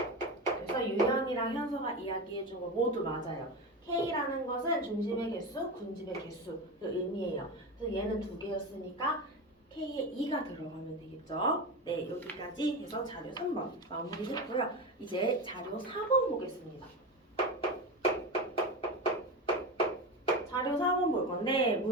그래서 유현이랑 현서가 이야기해준 거 모두 맞아요. K라는 것은 중심의 개수, 군집의 개수를 의미해요. 그래서 얘는 두 개였으니까 K에 2가 들어가면 되겠죠. 네, 여기까지 해서 자료 3번 마무리했고요. 이제 자료 4번 보겠습니다. 자료 4번 볼 건데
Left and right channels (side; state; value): both; normal; correlation 0.21